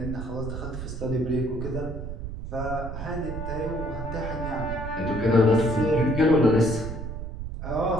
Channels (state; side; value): noise; right; rumble, 7 dB below the sound